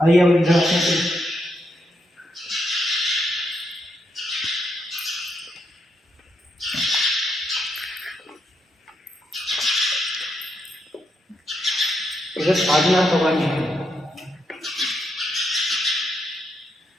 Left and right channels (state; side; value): normal; both; correlation 0.80